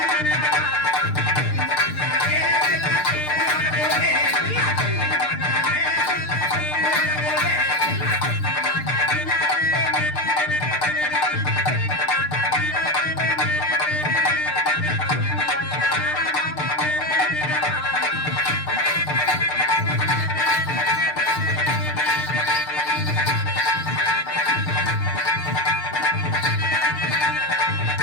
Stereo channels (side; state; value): right; late; 6.7 ms